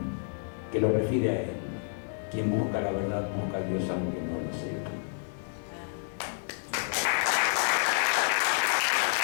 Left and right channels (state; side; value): silent; right; digital silence